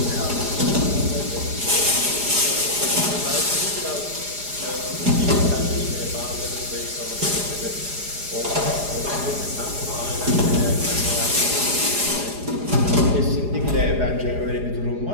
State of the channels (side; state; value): left; late; 4.9 ms